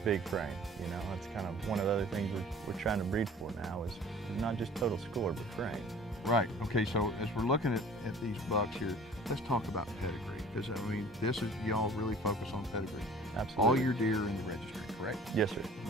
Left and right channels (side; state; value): both; normal; correlation 0.48